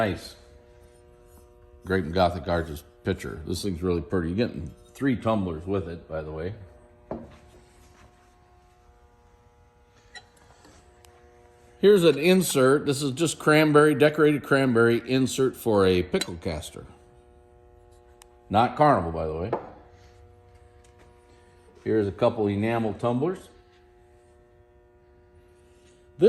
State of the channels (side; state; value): both; identical; correlation 1.00